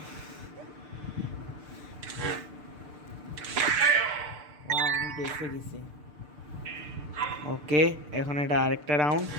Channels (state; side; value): late; left; 6.7 ms